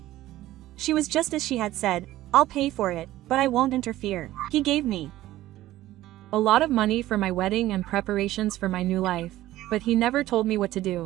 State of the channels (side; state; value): left; quieter; 15.2 dB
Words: She was just as she had said, "I'll pay for it, but I won't interfere." He gave me a lot of money for my wedding and preparations for my new life, but he never told me what to